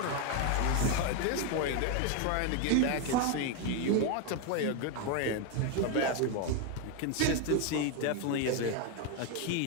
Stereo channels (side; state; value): both; different; correlation 0.02